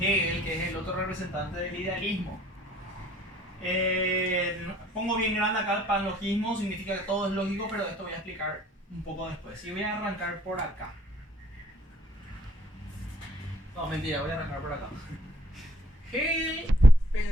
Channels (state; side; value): normal; both; correlation 0.59